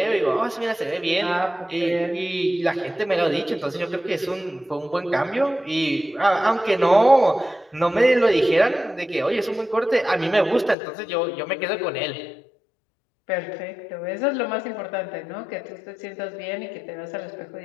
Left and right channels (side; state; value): right; drops out; at 10.8 s